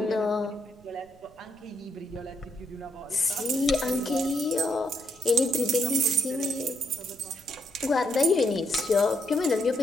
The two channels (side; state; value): right; noise; rumble, 28 dB below the sound